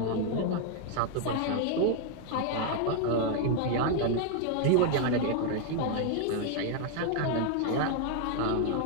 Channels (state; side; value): different; both; correlation 0.00